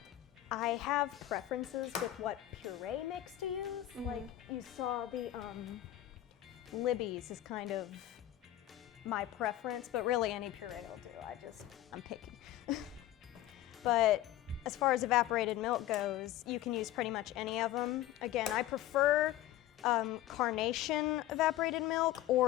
I have preferences with what puree mix to use. Like you saw the Libby's is kind of my preference, but really any puree will do. I'm picky. But as far as evaporated milk goes, you can use pretty much any of them. Again, I prefer Carnation evaporated milk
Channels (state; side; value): quieter; right; 13.9 dB